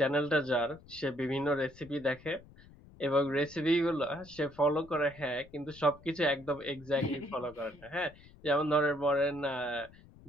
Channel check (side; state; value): left; noise; rumble, 22 dB below the sound